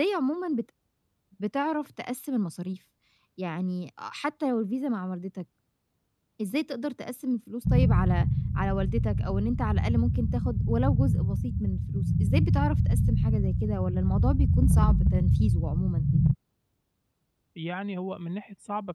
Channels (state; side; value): identical; both; correlation 1.00